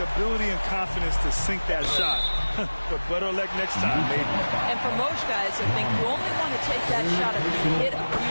ability and confidence to sink that shot, but better luck next time, maybe. And for most guys, I think you only want to take that shot if you hit a few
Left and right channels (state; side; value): inverted; both; correlation -1.00